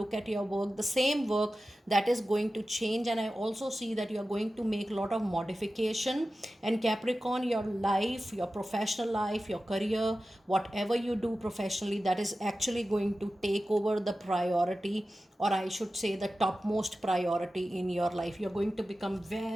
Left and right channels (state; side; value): normal; both; correlation 0.94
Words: at your work, the same work, that is going to change. And I also see that you are going to make a lot of modification. And Capricorn, your life, your professional life, your career, whatever you do professionally, that is actually going to take over the priority, or I should say the topmost priority in your life. You're going to become